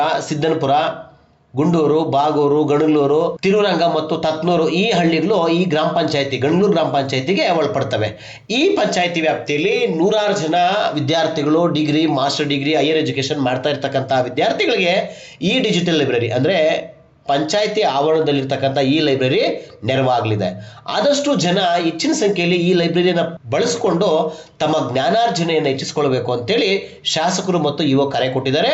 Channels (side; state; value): both; identical; correlation 1.00